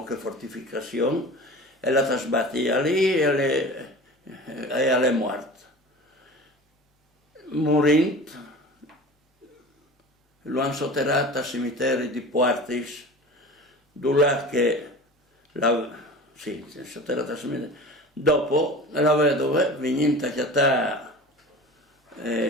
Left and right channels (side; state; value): both; normal; correlation 0.37